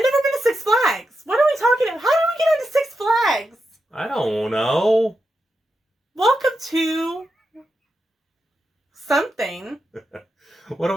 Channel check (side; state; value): both; normal; correlation 0.87